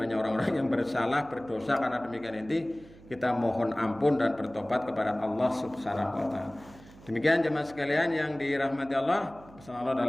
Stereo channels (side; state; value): right; noise; hum, 22 dB below the sound